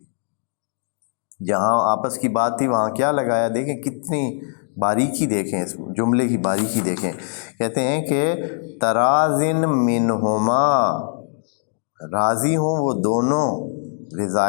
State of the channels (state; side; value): silent; right; digital silence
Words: جہاں آپس کی بات تھی وہاں کیا لگایا، دیکھیں کتنی باریکی، دیکھیں اس جملے کی باریکی دیکھیں، کہتے ہیں کہ تَرَاضٍ مِّنْهُمَا، راضی ہوں وہ دونوں،